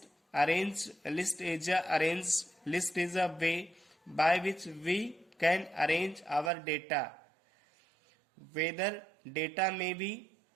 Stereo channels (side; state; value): left; drops out; at 6.5 s